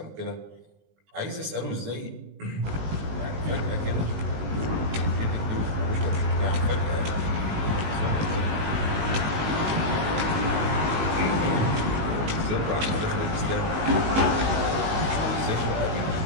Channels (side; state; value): left; late; 19 ms